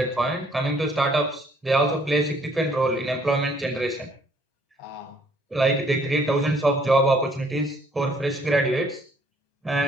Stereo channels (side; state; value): both; normal; correlation 0.63